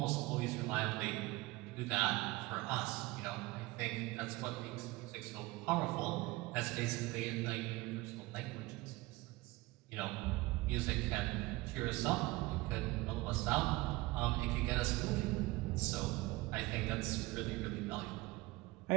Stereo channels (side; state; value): left; quieter; 21.0 dB